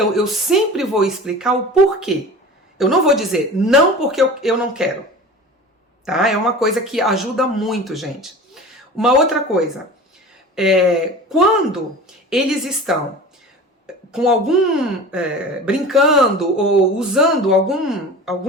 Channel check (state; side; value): normal; both; correlation 0.36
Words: eu sempre vou explicar o porquê. Eu não vou dizer não porque eu não quero, tá? É uma coisa que ajuda muito, gente. Uma outra coisa, quando eles estão com brincando ou usando